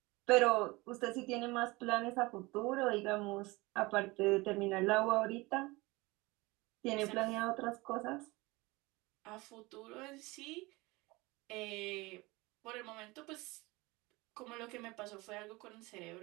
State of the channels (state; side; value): quieter; left; 22.8 dB